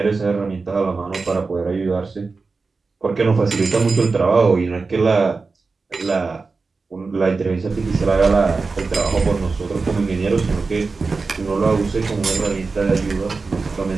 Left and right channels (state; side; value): quieter; left; 4.2 dB